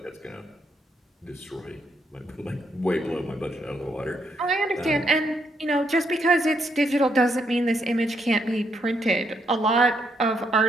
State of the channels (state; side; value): normal; both; correlation 0.76